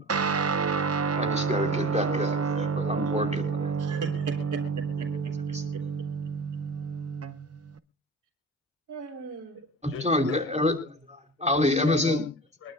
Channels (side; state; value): both; normal; correlation 0.37